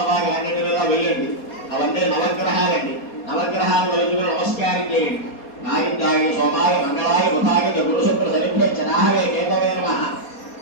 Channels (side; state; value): right; late; 4.2 ms